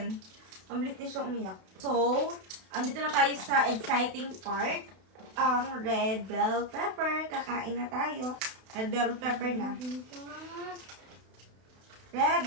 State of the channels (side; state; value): left; late; 32 ms